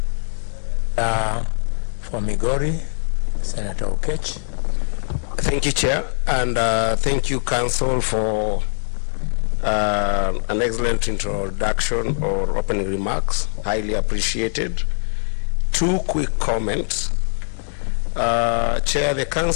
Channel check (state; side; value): silent; right; digital silence